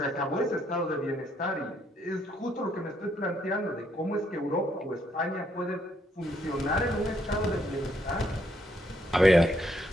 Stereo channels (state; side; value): normal; both; correlation 0.73